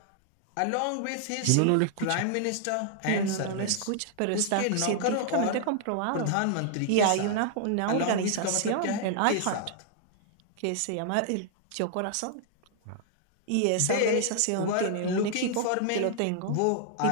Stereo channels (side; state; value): both; different; correlation -0.01